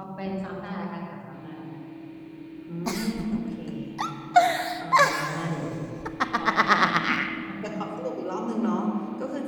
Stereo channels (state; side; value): identical; both; correlation 1.00